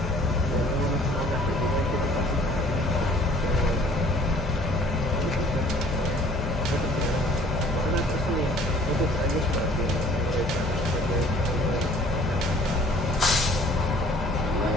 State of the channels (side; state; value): both; normal; correlation 0.54